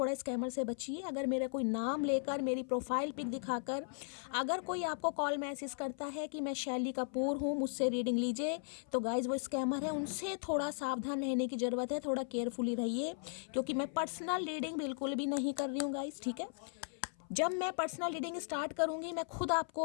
स्कैमर से बचिए। अगर मेरा कोई नाम लेकर, मेरी प्रोफाइल पिक दिखाकर अगर कोई आपको कॉल मैसेज करता है कि मैं शैली कपूर हूँ, मुझसे रीडिंग लीजिए, तो गाइस वो स्कैमर है, उनसे थोड़ा सावधान रहने की ज़रूरत है। थोड़ा केयरफुली रहिए, क्योंकि मैं पर्सनल रीडिंग बिल्कुल भी नहीं कर रही हूँ गाइस। ठीक है, जब मैं पर्सनल रीडिंग स्टार्ट करूंगी मैं खुद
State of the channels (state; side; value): silent; right; 53 dB below the other